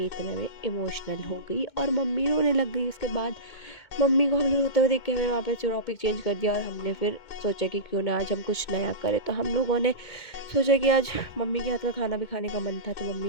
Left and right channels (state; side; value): late; right; 2.1 ms